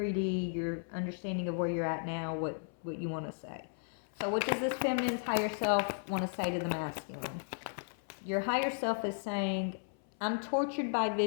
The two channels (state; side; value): silent; right; 54 dB below the other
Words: your understanding of where you're at now, what you want to say. So what does this feminine's higher self want to say to the masculine? Your higher self is saying, I'm tortured by